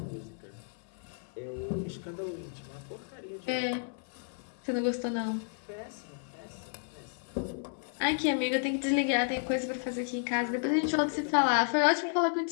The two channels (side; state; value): right; silent; 56 dB below the other